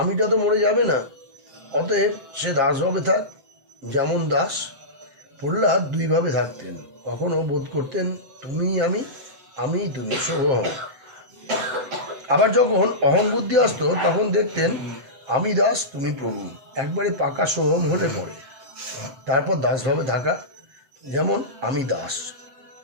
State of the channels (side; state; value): left; late; 7.9 ms